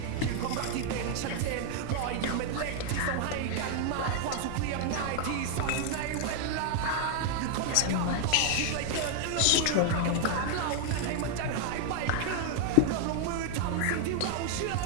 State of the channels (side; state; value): both; different; correlation 0.00